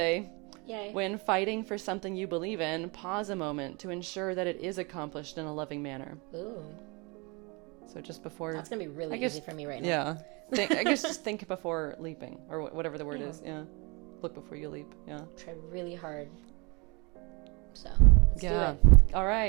Yay. When fighting for something you believe in, pause a moment to ensure that it is accomplished in a loving manner. Ooh. So just before... That's going to be really easy for me right now. Yeah. I guess just think before leaping, or whatever the word is. Yeah. Look before you leap. Yeah. Try really hard. So, let's do it. All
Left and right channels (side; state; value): left; quieter; 28.9 dB